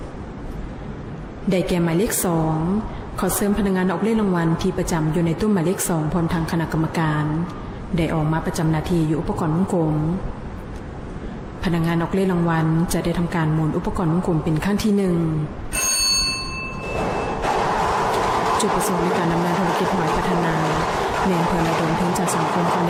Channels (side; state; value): both; identical; correlation 1.00